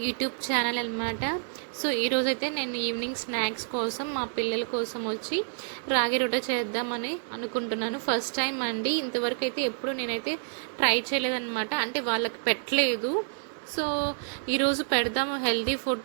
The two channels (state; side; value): silent; left; digital silence